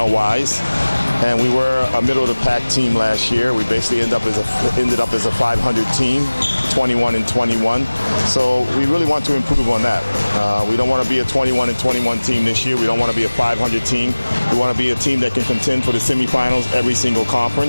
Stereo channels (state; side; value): inverted; both; correlation -1.00